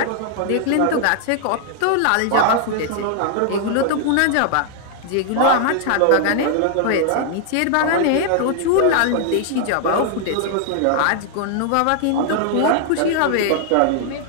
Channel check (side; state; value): both; different; correlation 0.00